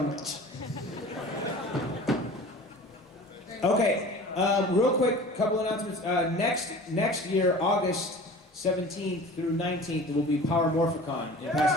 Okay, real quick, couple announcements. Next year, August 17th through 19th, there will be Power Morphicon in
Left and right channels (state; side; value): normal; both; correlation 0.40